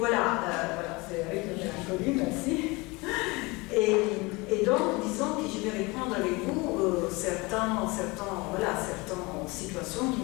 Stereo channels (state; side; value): quieter; right; 24.9 dB